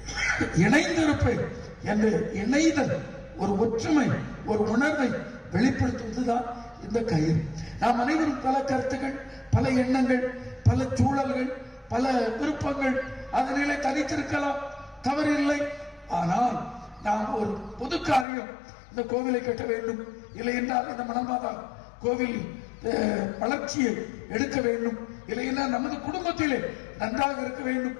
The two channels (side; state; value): right; drops out; at 18.2 s